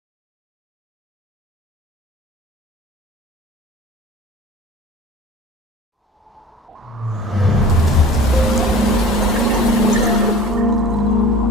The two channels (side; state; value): both; normal; correlation 0.42